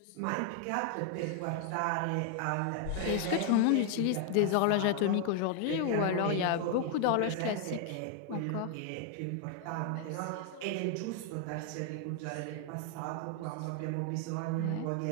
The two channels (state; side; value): different; both; correlation 0.00